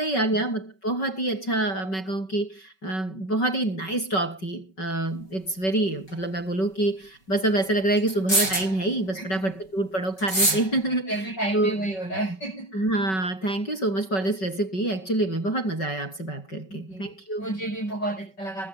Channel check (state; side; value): late; right; 5.3 ms